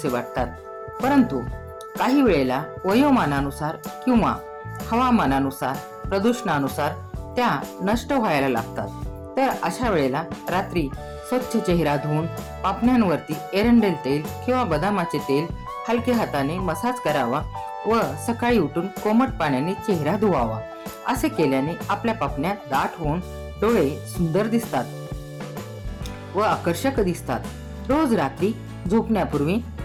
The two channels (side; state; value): both; identical; correlation 1.00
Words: वाटतात, परंतु काही वेळेला वयोमानानुसार किंवा हवामानानुसार, प्रदूषणानुसार त्या नष्ट व्हायला लागतात. तर अशा वेळेला रात्री स्वच्छ चेहरा धुवून पापण्यांवरती एरंडेल तेल किंवा बदामाचे तेल हलक्या हाताने मसाज करावा व सकाळी उठून कोमट पाण्याने चेहरा धुवावा. असे केल्याने आपल्या पापण्या दाट होऊन डोळे सुंदर दिसतात व आकर्षक दिसतात. रोज रात्री झोपण्यापूर्वी